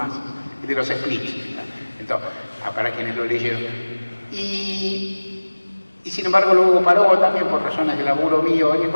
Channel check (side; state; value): both; inverted; correlation -1.00